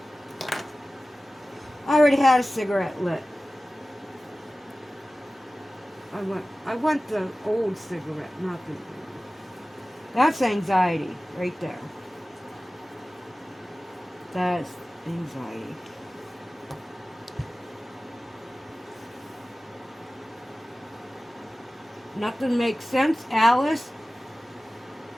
I already had a cigarette lit. I want the old cigarette, not the. That's anxiety right there. That's anxiety. Nothing makes sense, Alice.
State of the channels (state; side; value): normal; both; correlation 0.97